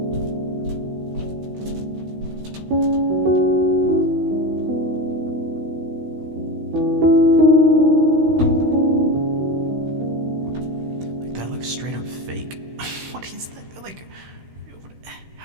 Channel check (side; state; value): left; late; 16 ms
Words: That looks straight up fake. What is that? Like,